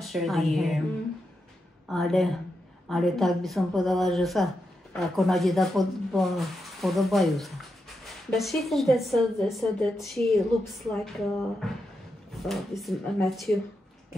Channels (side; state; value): both; normal; correlation 0.86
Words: sure the year. Ale tak by som povedala, že sa ako na deda podobajú sa. But she thinks that so that she looks like this Matthew.